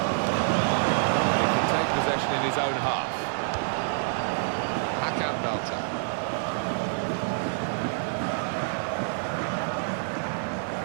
Take possession in his own half. Hakan Belter.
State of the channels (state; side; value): silent; left; digital silence